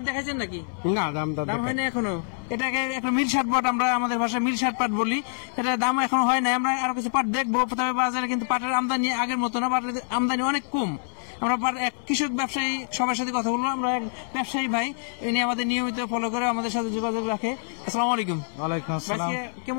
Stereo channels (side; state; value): right; silent; 61 dB below the other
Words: দেখাইছেন নাকি? না, দাম হয়নি এখনো। এটাকে একটা মিল শার্ট পাট, আমরা আমাদের ভাষায় মিল শার্ট পাট বলি। এটা দাম এখনো হয় না। আমরা আরো কিছু পাট দেখবো। তবে বাজারে কিন্তু পাটের আমদানি আগের মতো না, পাটের আমদানি অনেক কম। আমরা এক কৃষক ব্যবসায়ী সবার সাথে কথা বলবো। আমরা এক ব্যবসায়ী ভাই, ইনি আমাদের নিয়মিত ফলো করে আমাদের সাথে যোগাযোগ রাখে। আসসালামু আলাইকুম। ওয়ালাইকুম আসসালাম।